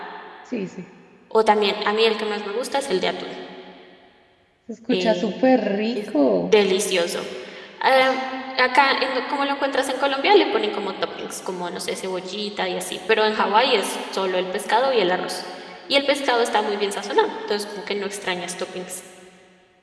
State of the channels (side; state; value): both; identical; correlation 1.00